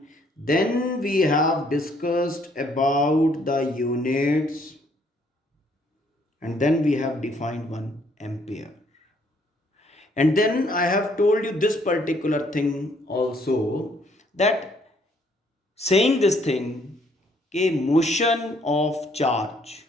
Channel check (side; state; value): both; normal; correlation 0.66